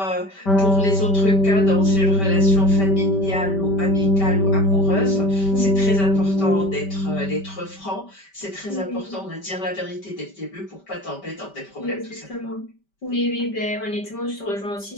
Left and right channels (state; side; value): late; right; 5.1 ms